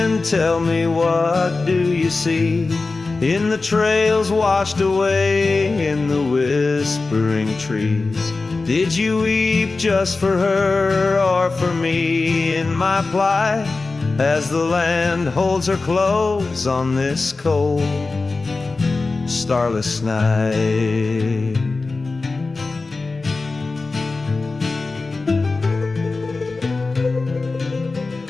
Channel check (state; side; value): quieter; right; 3.7 dB